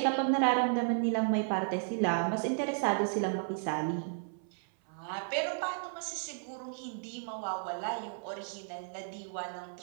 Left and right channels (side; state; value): left; silent; 55 dB below the other